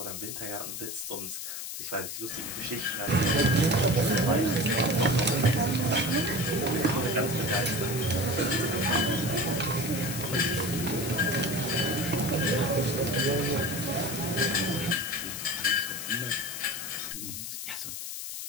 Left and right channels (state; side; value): noise; left; hiss, 7 dB below the sound